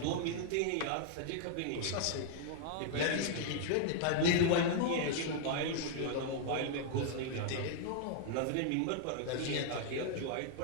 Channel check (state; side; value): different; both; correlation 0.00